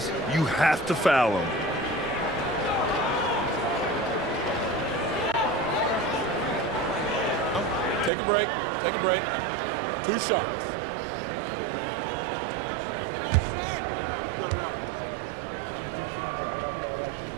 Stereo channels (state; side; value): drops out; left; at 8.1 s